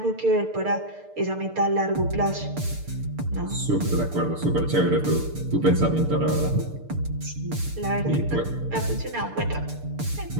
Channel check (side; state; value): left; late; 6.7 ms